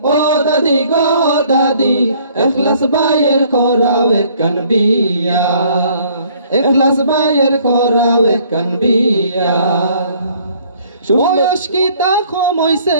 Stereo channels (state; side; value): inverted; both; correlation -0.60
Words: ও দাদি গো ও দাদি, ইখলাস বাইয়ের করাও এখান বিয়া, ইখলাস বাইয়ের করাও এখান বিয়া। বয়স কি তা কমইছে